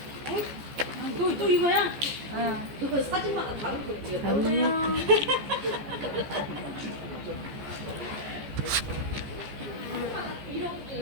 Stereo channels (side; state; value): left; late; 14 ms